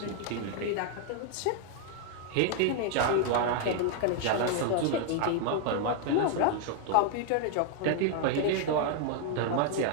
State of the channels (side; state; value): both; different; correlation 0.00